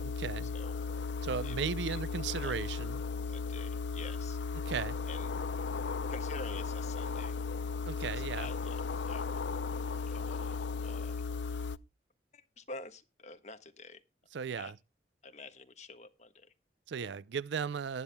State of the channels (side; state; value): both; normal; correlation 0.31